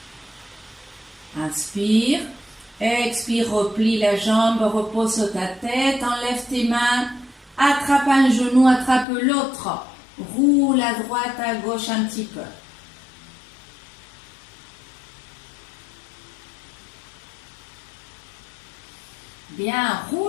Inspire. Expire, replie la jambe, repose ta tête, enlève tes mains, attrape un genou, attrape l'autre. Roule à droite, à gauche un petit peu. Bien,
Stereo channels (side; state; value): right; drops out; at 9.1 s